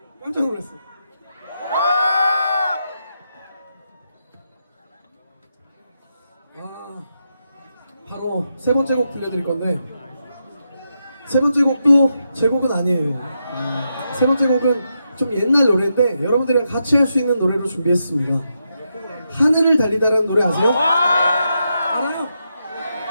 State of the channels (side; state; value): both; inverted; correlation -0.84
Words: 깜짝 놀랐어. 바로 세 번째 곡 들려드릴 건데 세 번째 곡도 제 곡은 아니에요. 세 번째 곡은 좀 옛날 노래인데 여러분들이랑 같이 할 수 있는 노래로 준비했습니다. 하늘을 달리다라는 노래 아세요? 알아요?